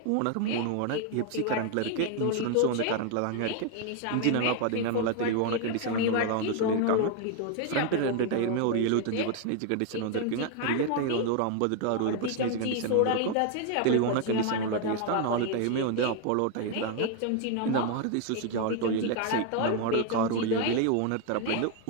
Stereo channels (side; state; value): both; different; correlation 0.01